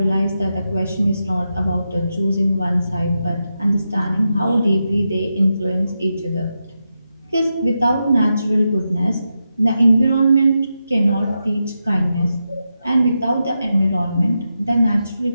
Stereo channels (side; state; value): both; inverted; correlation -0.88